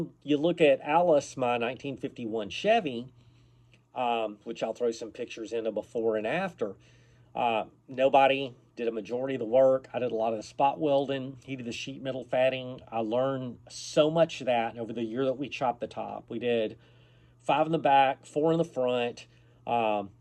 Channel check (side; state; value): both; identical; correlation 1.00